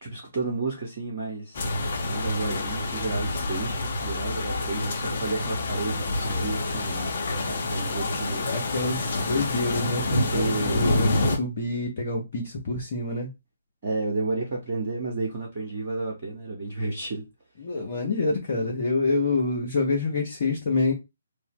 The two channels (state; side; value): inverted; both; correlation -0.72